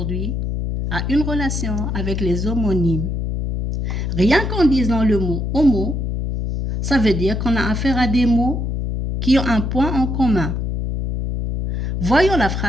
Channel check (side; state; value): left; noise; hum, 2 dB below the sound